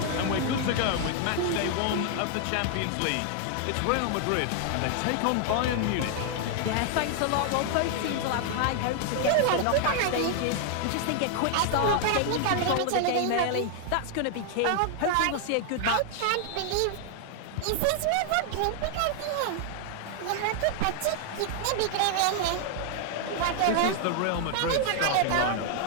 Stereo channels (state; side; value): different; both; correlation 0.00